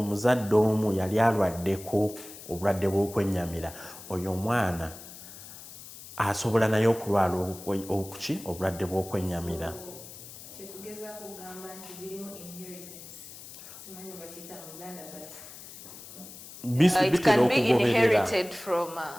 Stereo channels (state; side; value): noise; left; hiss, 15 dB below the sound